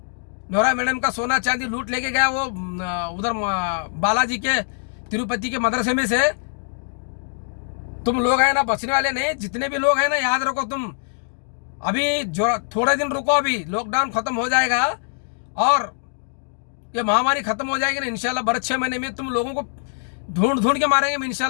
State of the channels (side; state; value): right; silent; digital silence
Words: नोरा मैडम का सोना चांदी लूट लेके गया वो उधर बालाजी के तिरुपति के मदरसे में से। तुम लोग है ना बचने वाले नहीं, जितने भी लोग हैं ना, याद रखो। तुम अभी जो थोड़े दिन रुको, अभी लॉकडाउन खत्म हो जाएगा और ये महामारी खत्म हो जाएगी ना इंशाल्लाह। बड़े 6 महीने में तुम लोगों को ढूंढ के मारेंगे